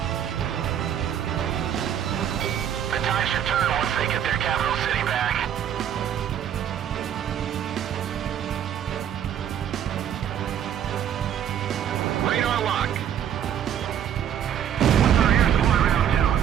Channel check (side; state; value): left; quieter; 9.6 dB